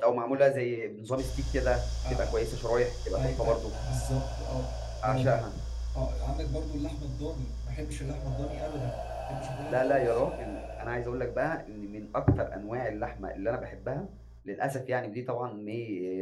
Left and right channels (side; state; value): both; identical; correlation 1.00